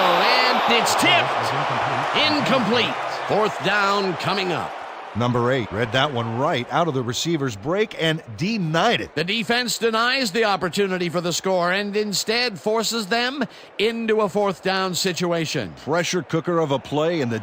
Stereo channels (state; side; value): identical; both; correlation 1.00